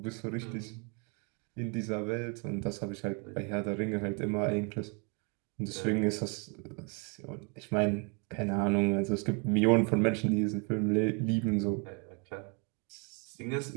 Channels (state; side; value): quieter; left; 35.0 dB